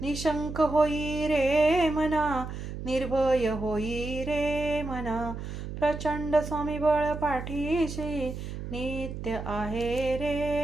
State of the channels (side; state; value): right; noise; hum, 7 dB below the sound